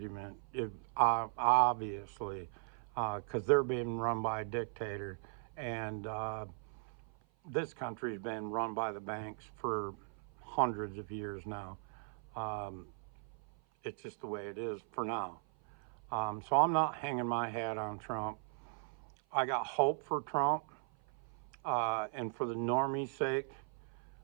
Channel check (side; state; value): left; silent; 52 dB below the other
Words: Obviously, because they're being run by a dictator, and this country's been run by the banks for hundreds of years now. Um, it's just the way it is for now. So I'm not hanging my hat on Trump. I got hope for Trump, and for the normie's sake,